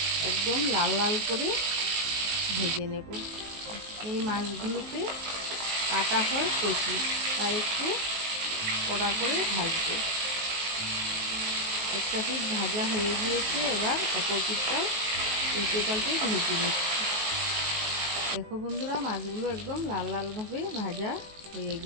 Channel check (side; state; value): left; late; 19 ms